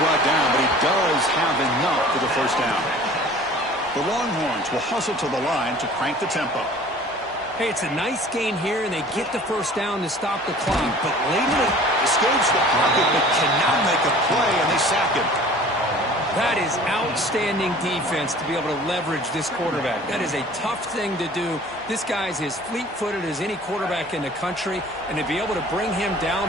down, but he does have enough for the 1st down. The Longhorns will hustle to the line to crank the tempo. Hey, it's a nice gain here, and they get the 1st down to stop the clock. But later, escapes the pocket, but cannot make a play, and they sack him. that is outstanding defense to be able to leverage this quarterback. That is a tough thing to do. This guy's as fleet-footed as any quarterback in the country, and to be able to bring him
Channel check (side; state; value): both; normal; correlation 0.47